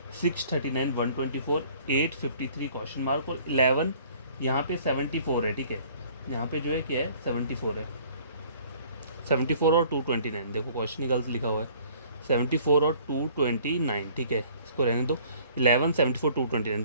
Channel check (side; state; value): both; inverted; correlation -0.55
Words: 639 124 853 क्वेश्चन मार्क, और 11 यहाँ पे 74 है, ठीक है। यहाँ पे जो है क्या है 74 है, 74 और 229, देखो क्वेश्चन ही गलत लिखा हुआ है, 74 और 229, ठीक है, इसको रहने दो। 11 74